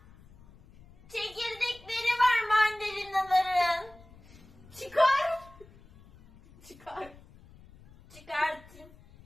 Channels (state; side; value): noise; left; rumble, 24 dB below the sound